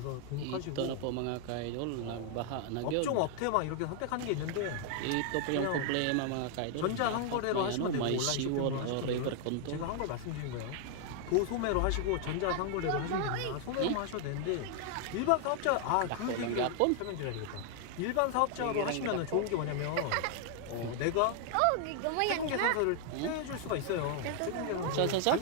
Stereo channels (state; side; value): different; both; correlation 0.00